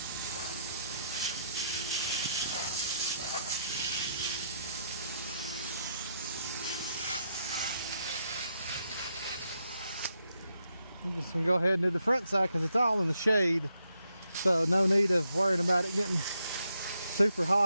I'm just gonna go ahead and do the front side because it's all in the shade. So no need of worrying about it getting super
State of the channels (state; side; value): inverted; both; correlation -0.78